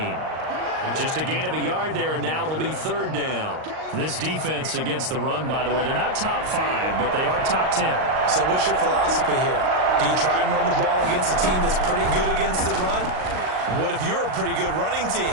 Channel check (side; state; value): left; late; 38 ms